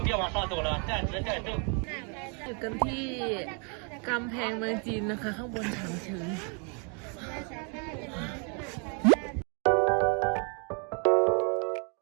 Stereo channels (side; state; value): left; quieter; 37.9 dB